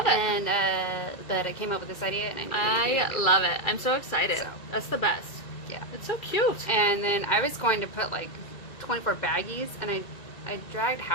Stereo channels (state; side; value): late; right; 2.0 ms